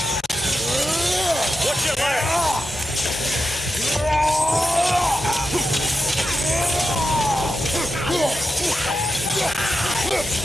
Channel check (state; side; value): normal; both; correlation 0.89